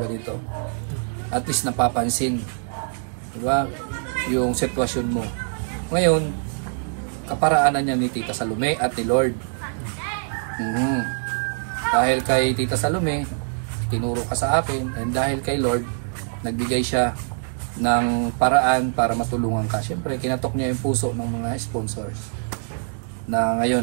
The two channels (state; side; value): silent; left; 63 dB below the other